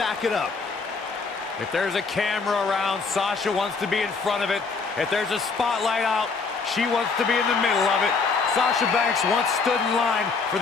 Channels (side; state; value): right; quieter; 4.6 dB